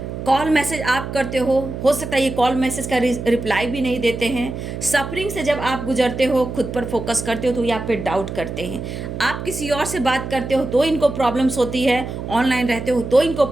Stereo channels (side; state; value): right; noise; hum, 7 dB below the sound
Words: कॉल मैसेज आप करते हो सकता है ये कॉल मैसेज का रिप्लाई भी नहीं देते हैं। सफरिंग से जब आप गुजरते हो, खुद पर फोकस करते हो, तो ये आप पे डाउट करते हैं। आप किसी और से बात करते हो तो इनको प्रॉब्लम्स होती है, ऑनलाइन रहते हो तो इनको